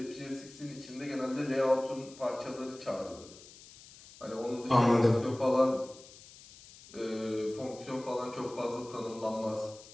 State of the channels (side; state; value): left; noise; hiss, 20 dB below the sound